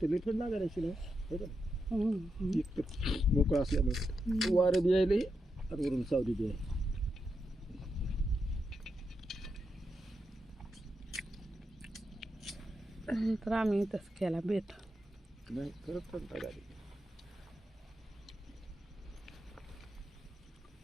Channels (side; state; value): both; normal; correlation 0.85